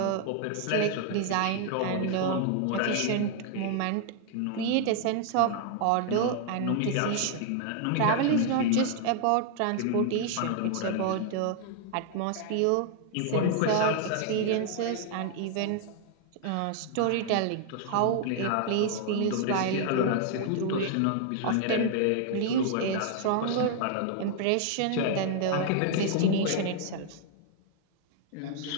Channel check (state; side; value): different; both; correlation 0.00